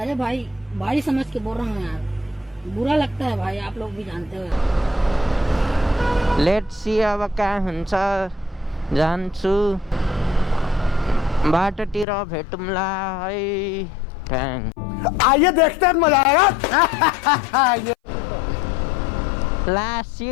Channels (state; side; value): drops out; right; at 12.1 s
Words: अरे भाई भाई समझ के बोल रहा हूँ यार बुरा लगता है भाई आप लोग भी जानते हो लेट्स सी अब कहाँ हुन्छ जान्छु बाटोतिर भेटौँला है थ्याङ्क आइए देखते हैं मजा आएगा लास्ट